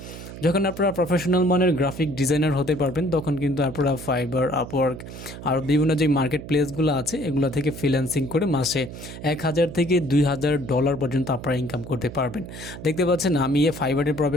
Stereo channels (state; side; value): noise; right; hum, 12 dB below the sound